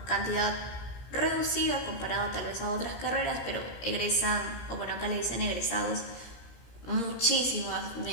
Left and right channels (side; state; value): right; late; 17 ms